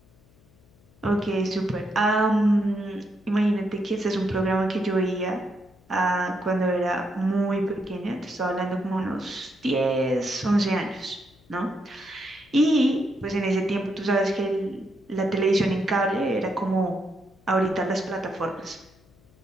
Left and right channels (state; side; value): noise; left; hum, 30 dB below the sound